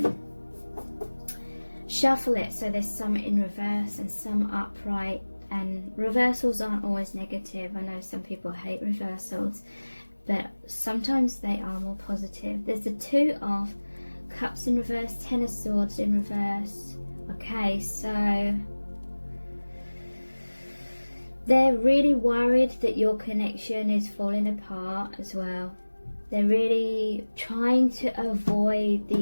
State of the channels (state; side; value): inverted; both; correlation -1.00